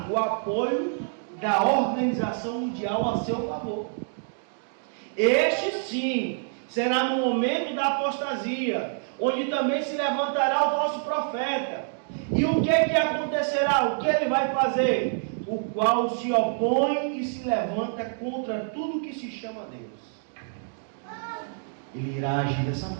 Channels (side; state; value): left; silent; digital silence